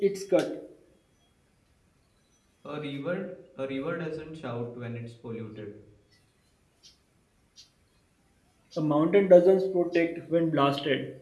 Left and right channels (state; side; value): identical; both; correlation 1.00